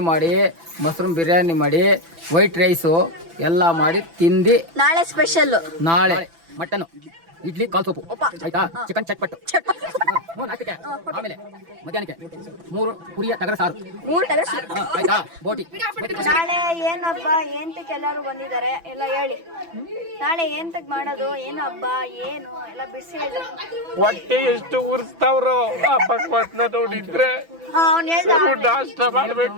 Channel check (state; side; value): late; left; 6.0 ms